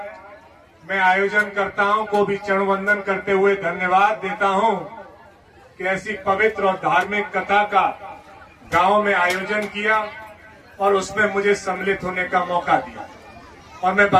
मैं आयोजनकर्ताओं को भी चरण वंदन करते हुए धन्यवाद देता हूं कि ऐसी पवित्र और धार्मिक कथा का गांव में आयोजन किया और उसमें मुझे सम्मिलित होने का मौका दिया। और मैं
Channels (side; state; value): both; identical; correlation 1.00